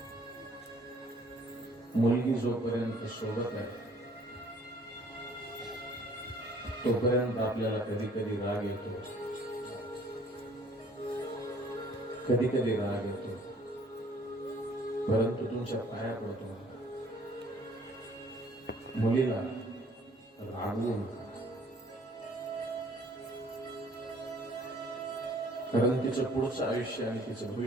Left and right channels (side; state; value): both; normal; correlation 0.57